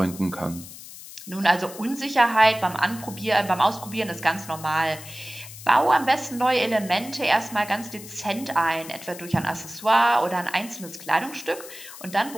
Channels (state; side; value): noise; left; hiss, 15 dB below the sound